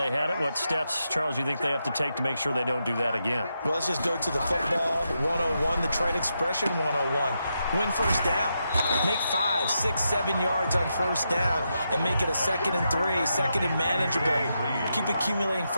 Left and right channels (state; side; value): inverted; both; correlation -0.84